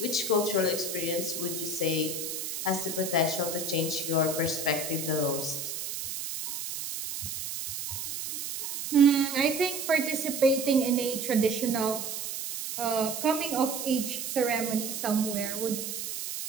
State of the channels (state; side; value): noise; right; hiss, 5 dB below the sound